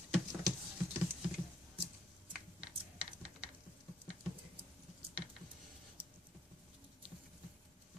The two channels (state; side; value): normal; both; correlation 0.70